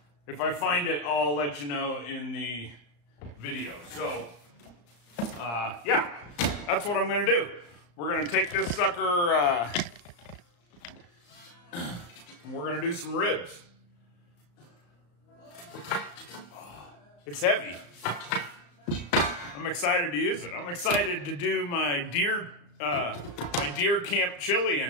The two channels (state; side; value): late; right; 34 ms